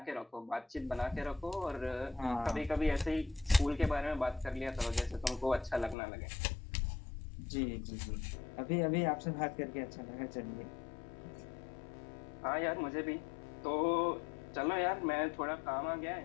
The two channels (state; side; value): drops out; right; at 6.0 s